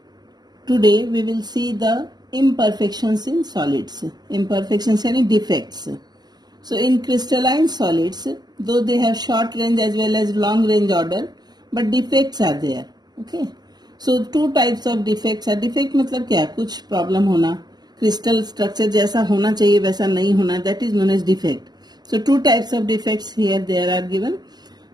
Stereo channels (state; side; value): late; left; 0.20 ms